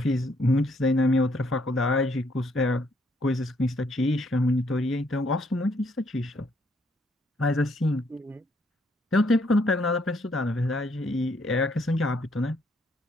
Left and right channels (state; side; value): normal; both; correlation 0.70